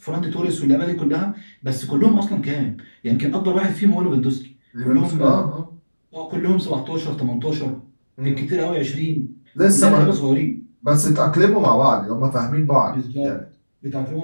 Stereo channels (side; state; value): both; inverted; correlation -1.00